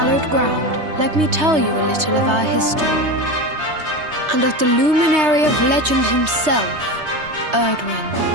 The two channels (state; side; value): late; left; 3.2 ms